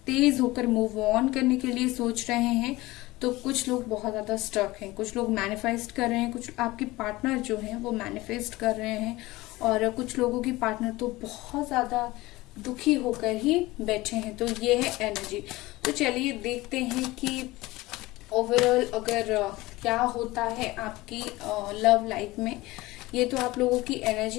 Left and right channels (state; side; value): quieter; right; 19.7 dB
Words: तेज होकर मूव ऑन करने के लिए सोच रहे हैं, तो कुछ लोग बहुत ज्यादा स्टक हैं, कुछ लोग मैनिफेस्ट कर रहे हैं, कुछ आपके पार्टनर जो हैं वो मैनिफेस्ट कर रहे हैं, और कुछ लोगों की पार्टनर तो बहुत ज्यादा दुखी होकर ही बैठे हैं। तो ये है एनर्जी। तो चलिए देखते हैं कि ओवरऑल अगर क्या होता है आपकी लव लाइफ में। ये तो आप लोगों की